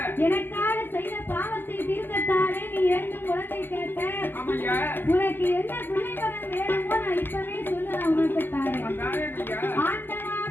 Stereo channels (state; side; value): late; right; 0.099 ms